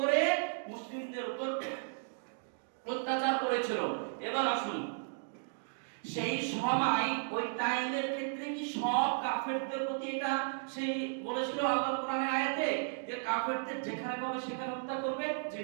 মুসলিমদের উপর অত্যাচার করেছিল। এবার আসুন, সেই সময় ওই টাইমের ক্ষেত্রে কি সব কাফেরদের প্রতি এটা সেই বলেছিল আল্লাহ কোরআনের আয়াতে যে কাফেরদের যেখানে পাবে সেখানে হত্যা করবে? জি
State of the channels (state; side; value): silent; left; digital silence